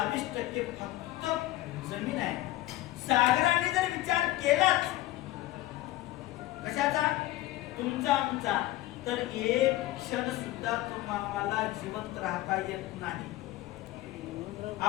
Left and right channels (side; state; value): right; quieter; 16.5 dB